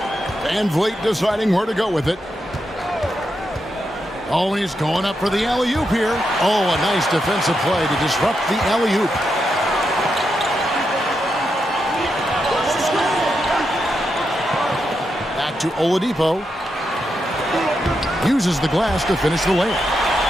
Van Vliet deciding where to go with it. Oh, and he's going up for the alley-oop here. Oh, a nice defensive play to disrupt the alley-oop. Back to Oladipo. Uses the glass to finish the layup.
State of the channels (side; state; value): both; normal; correlation 0.85